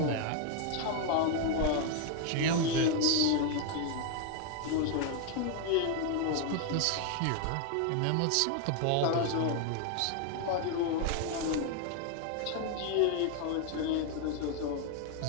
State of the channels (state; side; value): different; both; correlation 0.01